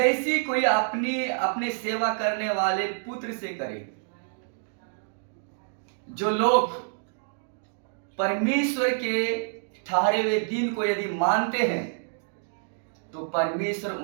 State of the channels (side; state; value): left; silent; digital silence